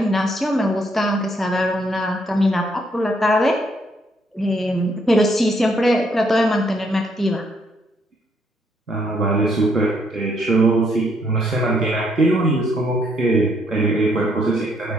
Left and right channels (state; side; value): normal; both; correlation 0.72